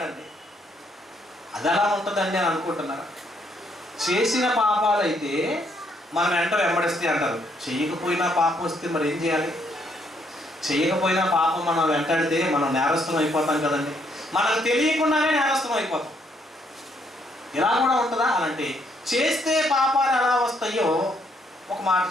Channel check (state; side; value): normal; both; correlation 0.71